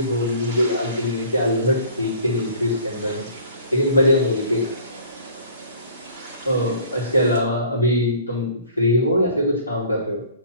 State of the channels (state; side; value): inverted; both; correlation -0.48